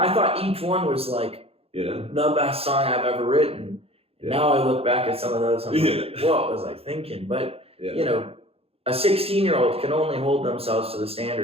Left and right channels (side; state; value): left; late; 0.28 ms